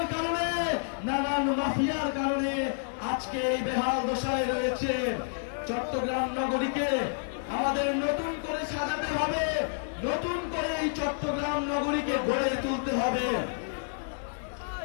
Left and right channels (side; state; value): right; silent; digital silence